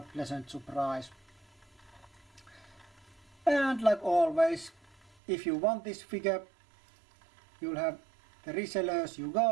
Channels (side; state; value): left; drops out; at 5.2 s